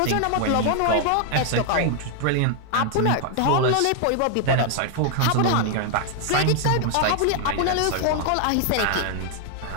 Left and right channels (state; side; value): different; both; correlation 0.00